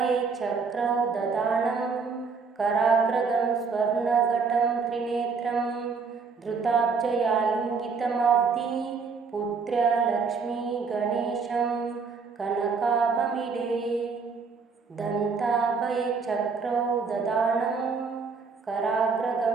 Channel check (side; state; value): left; quieter; 5.1 dB